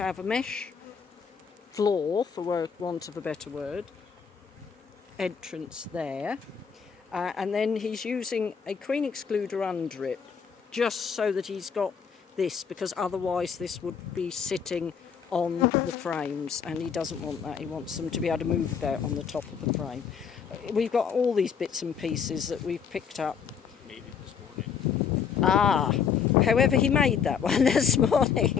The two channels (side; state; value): right; quieter; 6.8 dB